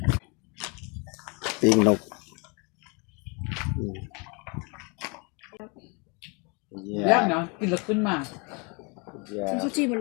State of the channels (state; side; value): quieter; right; 31.5 dB